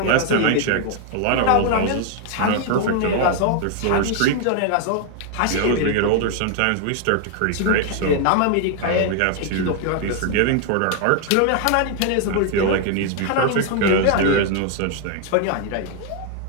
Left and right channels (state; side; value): different; both; correlation 0.00